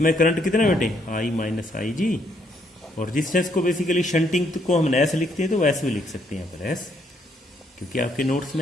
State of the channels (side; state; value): both; normal; correlation 0.71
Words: करंट कितना बेटे, आई माइनस आई जी। और रेजिस्टेंस को बेसिकली शंटिंग को हम एस लिखते हैं, तो एस भी लिख सकते हैं यहाँ पर एस, क्योंकि आपके नोट्स